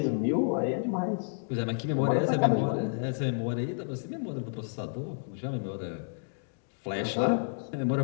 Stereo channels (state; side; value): silent; right; digital silence